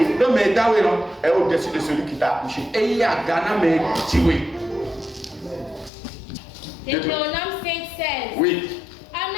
est au-dessus de celui qui t'a accouché. Deutéronome 5:16. Oui.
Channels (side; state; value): right; drops out; at 5.9 s